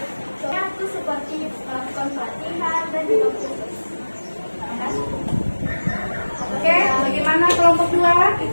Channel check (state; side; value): inverted; both; correlation -1.00